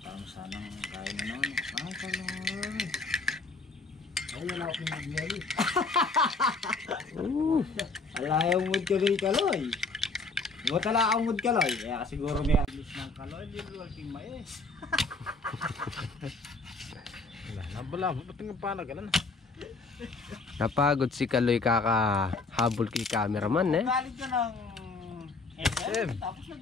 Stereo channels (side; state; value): right; quieter; 3.6 dB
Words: Tama sanang kain na naman. Ang kaloy. Ay, wala akong mag-yari. Alayaw mood ka rin kaloy. Huwag tala akong mood kaloy. Kaya siguro may aglis ng kaloy. Hindi mo aking mais. Wala, ba't nga panagalan? Napagod si Kaloy kakahabol kay cameraman eh. Galit ka ng SM. Tapos